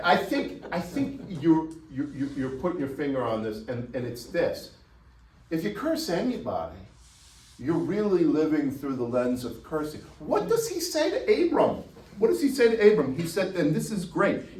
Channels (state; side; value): identical; both; correlation 1.00